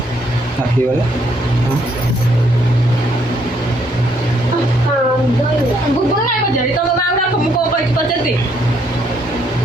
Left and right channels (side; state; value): both; normal; correlation 0.70